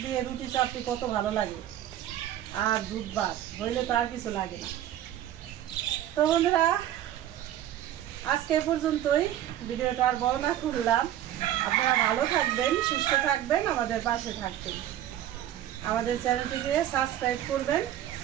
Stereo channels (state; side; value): quieter; left; 12.0 dB